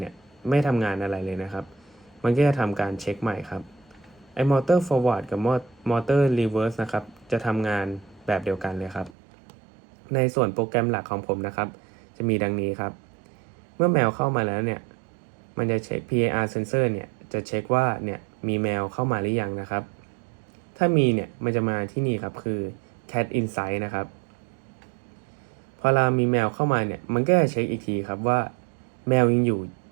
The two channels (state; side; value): drops out; left; at 9.2 s